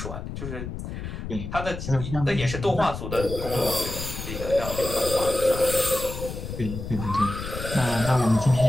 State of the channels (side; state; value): left; noise; rumble, 7 dB below the sound